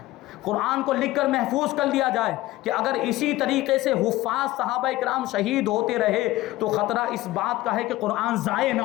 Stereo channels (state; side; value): quieter; right; 17.4 dB